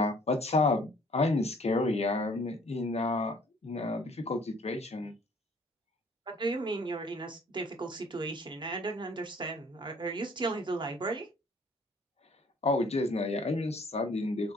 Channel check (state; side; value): normal; both; correlation 0.57